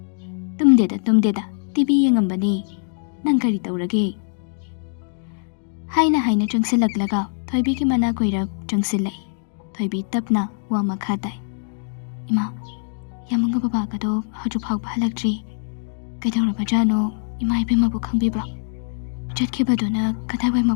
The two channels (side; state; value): right; silent; 64 dB below the other